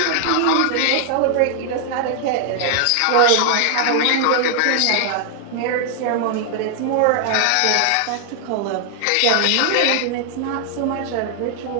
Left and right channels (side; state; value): both; different; correlation 0.00